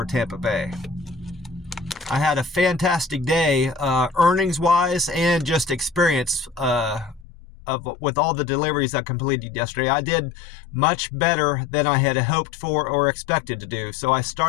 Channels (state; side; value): drops out; right; at 7.2 s